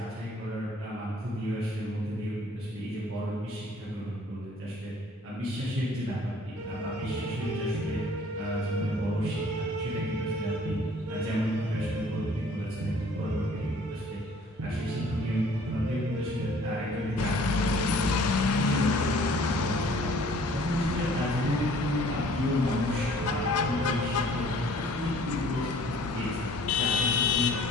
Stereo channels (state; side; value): normal; both; correlation 0.54